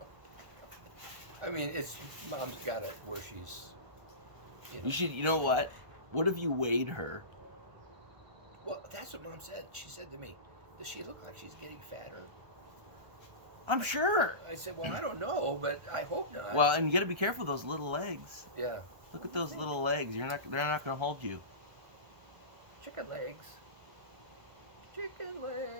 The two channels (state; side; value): late; left; 1.5 ms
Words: I mean, it's mom's got it where she's, you know. You should. You know what? What if you weighed her? Well, that's what mom said. She said to me, "Does she look like she's getting fatter?" I'm sure. I said, "Well, I don't know, but I hope not." Well, and you got to be careful of those little legs. yeah, Look at those little legs. They're not going to hold you. chicken legs. Chicken